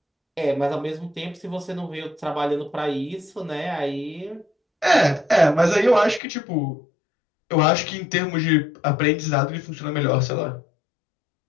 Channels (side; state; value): right; drops out; at 6.2 s